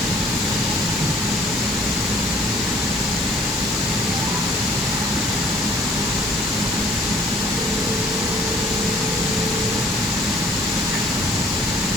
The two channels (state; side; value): normal; both; correlation 0.55